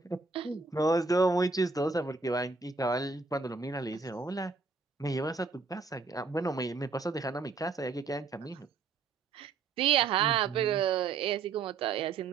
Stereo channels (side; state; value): left; quieter; 4.5 dB